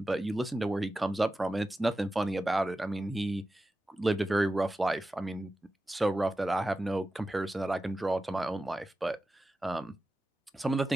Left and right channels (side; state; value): both; normal; correlation 0.93